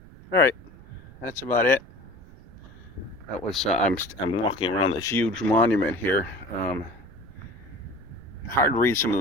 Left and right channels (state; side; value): noise; right; rumble, 20 dB below the sound